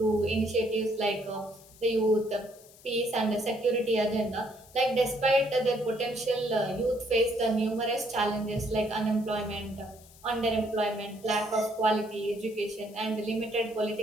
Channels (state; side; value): noise; left; hiss, 23 dB below the sound